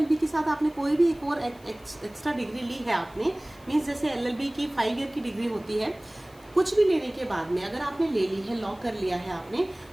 के साथ आपने कोई भी एक और एक्स्ट्रा डिग्री ली है, आपने मीन्स जैसे LLB की 5 ईयर की डिग्री होती है, कुछ भी लेने के बाद में अगर आपने ले ली है, लॉ कर लिया है आपने,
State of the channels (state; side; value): noise; left; hiss, 27 dB below the sound